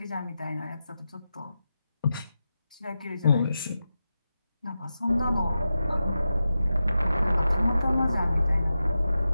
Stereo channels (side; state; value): both; inverted; correlation -0.91